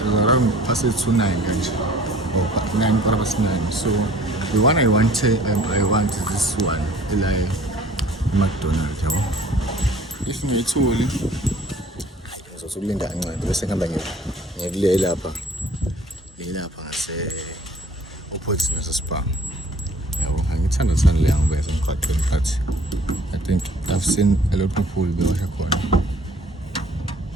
Around past 8 to 9 guys. Or 9:09. So the one I want is this one, like McDonald's, yabo. If ngiyithuli ngizosulinda kancane bese ngihamba ngivule lapha ngase opposite nase Spar. Yabo, ngithanda le ngoba esemgwaqweni but I think I've seen a lot of people bewasha khona.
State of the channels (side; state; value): both; normal; correlation 0.53